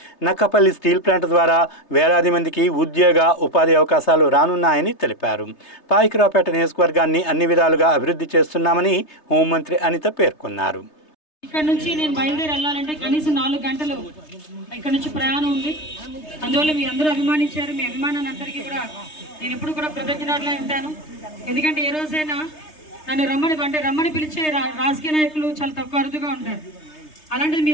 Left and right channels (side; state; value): right; late; 3.3 ms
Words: నక్కపల్లి స్టీల్ ప్లాంట్ ద్వారా వేలాది మందికి ఉద్యోగ, ఉపాధి అవకాశాలు రానున్నాయని తెలిపారు. పాయికరావుపేట నియోజకవర్గాన్ని అన్ని విధాలుగా అభివృద్ధి చేస్తున్నామని హోంమంత్రి అనిత పేర్కొన్నారు. ఇక్కడ నుంచి నేను బయలుదేరి వెళ్ళాలంటే కనీసం 4 గంటలు ఇక్కడ నుంచి ప్రయాణం ఉంది. అందువల్ల మీ అందరూ అభిమానించారు. మీ అభిమానాన్ని అందరికీ కూడా నేను ఎప్పుడు కూడా కృతజ్ఞతలే ఉంటాను. ఎందుకంటే ఏ రోజైనా నన్ను రమ్మని పిలిచే రాజకీయ నాయకులు చాలా తక్కువ అరుదుగా ఉంటారు. అలాంటిది